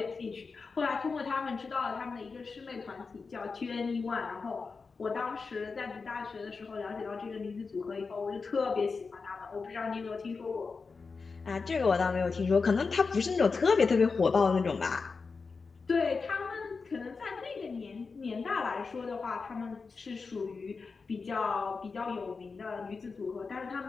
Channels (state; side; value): quieter; right; 4.6 dB